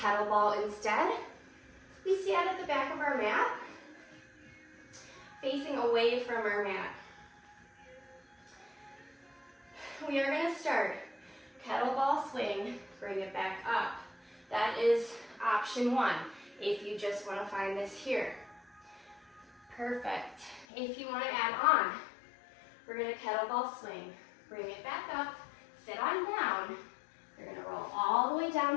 instead. We stand at the back of our mat, facing away from our mat. We are going to start kettlebell swing, bring it back up. That is option one, if you just want to find this here. Perfect. If you want to add on, we're going to kettlebell swing, bring it back up, sit on down. You're going to roll all the way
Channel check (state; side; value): drops out; right; at 20.7 s